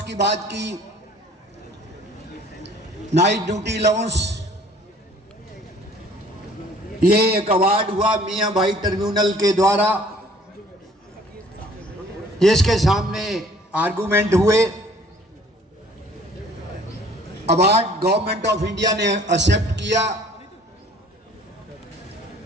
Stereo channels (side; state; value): both; normal; correlation 0.54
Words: की बात की। नाइट ड्यूटी अलाउंस ये एक अवार्ड हुआ मियाँ भाई ट्रिब्यूनल के द्वारा, जिसके सामने आर्गूमेंट हुए अवार्ड गवर्नमेंट ऑफ इंडिया ने एक्सेप्ट किया।